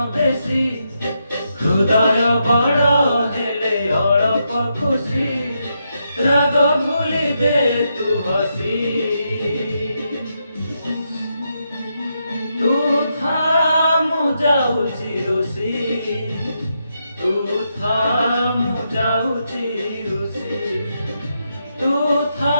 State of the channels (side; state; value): both; inverted; correlation -0.82